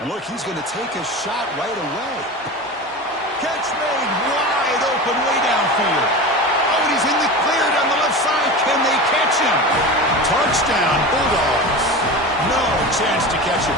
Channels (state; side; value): normal; both; correlation 0.29